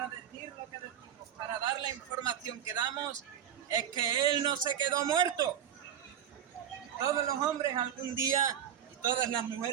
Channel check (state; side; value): quieter; left; 9.7 dB